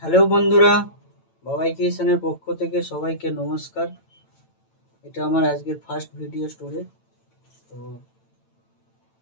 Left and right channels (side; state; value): right; late; 9.0 ms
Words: হ্যালো বন্ধুরা, বাবাই ক্রিয়েশনের পক্ষ থেকে সবাইকে নমস্কার। এটা আমার আজকের ফার্স্ট ভিডিও স্টোরে। তো